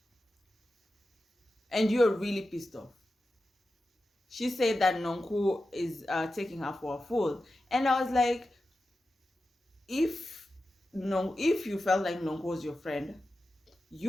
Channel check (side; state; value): both; normal; correlation 0.92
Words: And you're really pissed off. She said that Nonku is taking her for a fool. And I was like, if no, if you felt like Nonku was your friend,